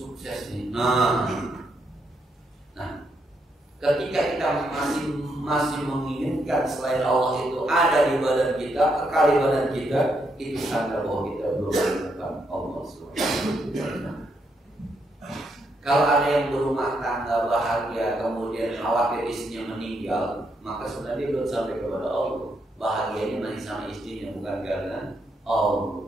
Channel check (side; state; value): both; normal; correlation 0.78